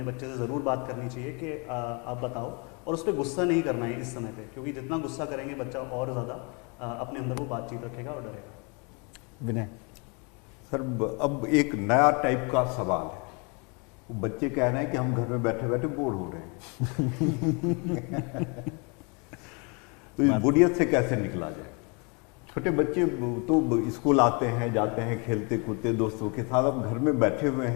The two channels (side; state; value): right; quieter; 32.7 dB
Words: बच्चे से ज़रूर बात करनी चाहिए कि आप बताओ, और उस पर गुस्सा नहीं करना है इस समय पे, क्योंकि जितना गुस्सा करेंगे बच्चा और ज़्यादा अपने अंदर वो बातचीत रखेगा और डरेगा। विनय सर, अब एक नया टाइप का सवाल है। बच्चे कह रहे हैं कि हम घर में बैठे बैठे बोर हो रहे हैं तो इस बोरियत से कैसे निकला जाए? छोटे बच्चे तो स्कूल आते हैं, जाते हैं, खेलते कूदते दोस्तों के साथ, अब घर में बैठे हुए